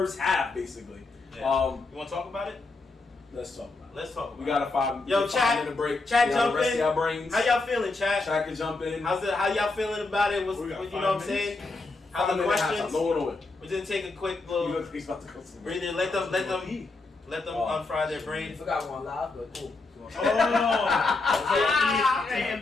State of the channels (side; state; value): right; quieter; 3.5 dB